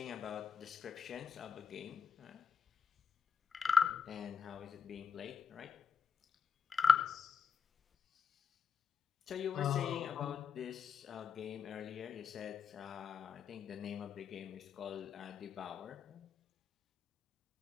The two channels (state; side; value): quieter; right; 6.3 dB